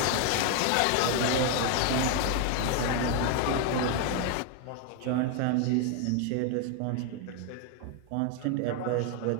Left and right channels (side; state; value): both; different; correlation 0.01